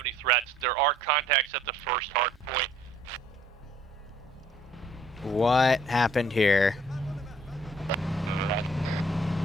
any threats. There are contacts at the first hard point. What happened here?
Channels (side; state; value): right; noise; hum, 29 dB below the sound